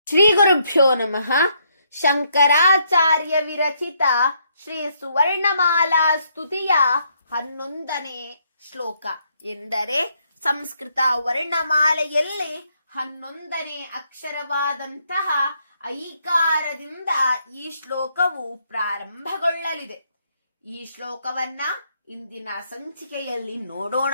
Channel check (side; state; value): both; inverted; correlation -0.73